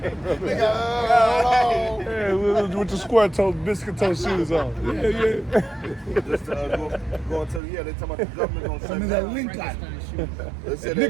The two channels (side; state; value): left; drops out; at 7.6 s